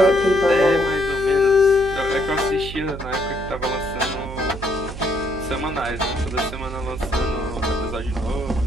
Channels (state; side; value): noise; right; hum, 10 dB below the sound